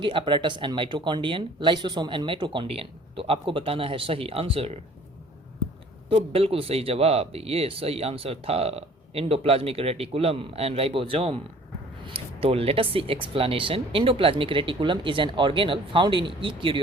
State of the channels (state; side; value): normal; both; correlation 0.52